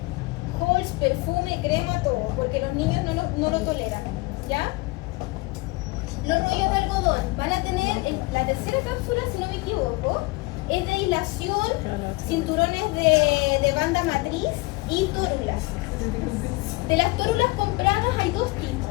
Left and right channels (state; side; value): quieter; right; 23.5 dB